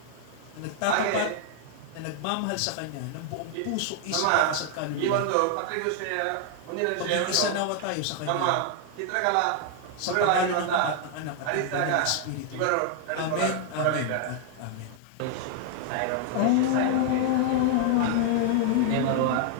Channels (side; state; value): both; different; correlation 0.00